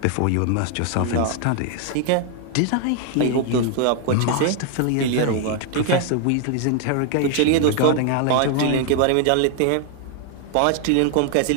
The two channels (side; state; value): both; different; correlation 0.00